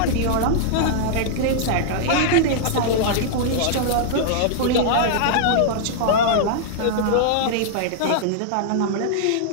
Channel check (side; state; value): both; different; correlation -0.01